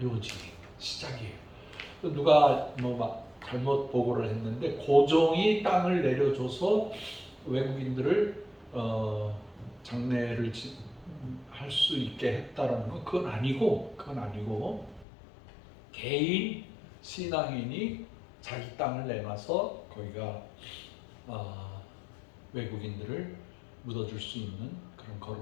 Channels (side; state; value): right; drops out; at 15.1 s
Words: 시작이에요. 누가 뭐 막 잘못 보고를 했는데, 고종이 땅을 내려줘서 외국인들을 장례를 할 수 있게 했다라는 건 그건 아니고 개인 신앙인이 자기 땅을 내놔서 거기가 외국인들을 묻어줄 수 있는 그런